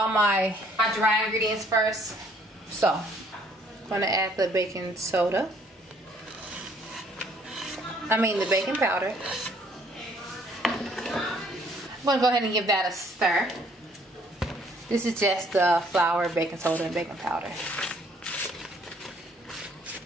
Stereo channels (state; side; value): normal; both; correlation 0.62